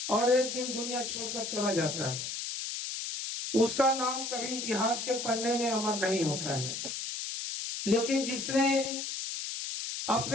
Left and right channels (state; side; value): noise; left; hiss, 5 dB below the sound